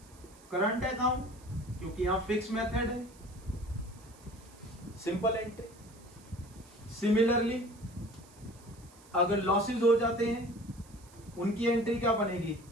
current account, क्योंकि यहां फिक्स मेथड है, सिंपल एंट्री। सिमिलरली अगर लॉसेस हो जाते हैं उनकी एंट्री क्या बनेगी,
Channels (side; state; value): right; noise; hiss, 25 dB below the sound